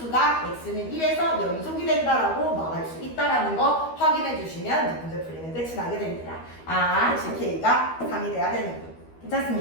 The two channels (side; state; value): right; late; 12 ms